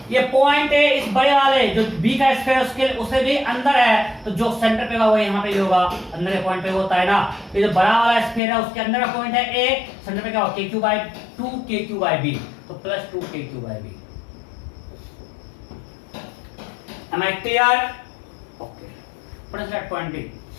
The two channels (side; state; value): right; drops out; at 8.4 s